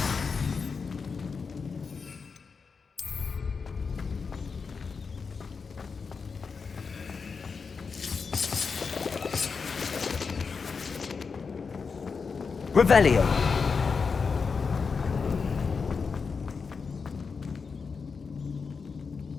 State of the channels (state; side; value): quieter; right; 5.2 dB